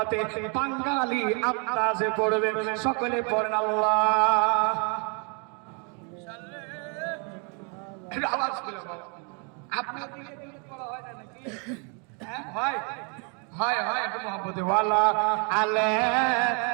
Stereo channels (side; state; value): left; quieter; 36.8 dB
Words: বাঙালি আন্দাজে পড়বেন। সকলে পড়েন আল্লাহ। আওয়াজ খুলে বলো। আপনার দিকে দিকে পড়া হয় না নাকি? হ্যাঁ হয় হয় হয়। একটু মোহাব্বতে। ওয়ালা আলা